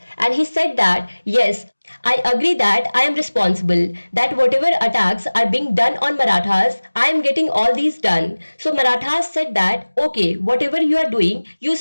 and he said that, yes, I agree that I am responsible, that whatever attacks are being done on Marathas, I am getting all these done. So Marathas said that, okay, whatever you are doing, you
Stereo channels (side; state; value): both; inverted; correlation -1.00